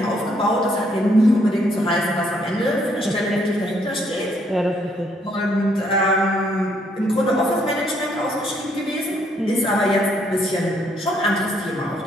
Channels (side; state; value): both; normal; correlation 0.70